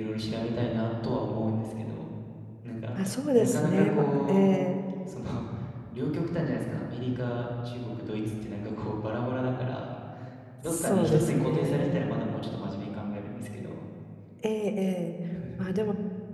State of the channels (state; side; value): identical; both; correlation 1.00